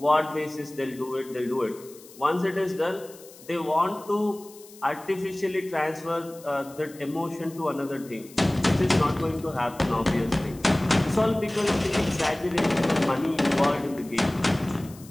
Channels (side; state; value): left; noise; hiss, 21 dB below the sound